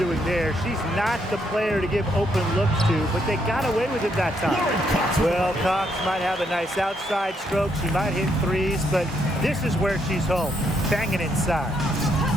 there. She's not the player to give open looks to, but they got away with it that time. Well, Cox might have a nice outside stroke. She might hit threes, but this is where she's home, banging inside.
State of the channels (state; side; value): normal; both; correlation 0.75